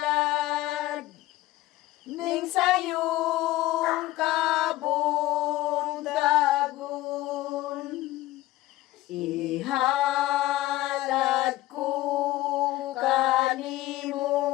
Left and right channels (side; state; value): right; quieter; 16.5 dB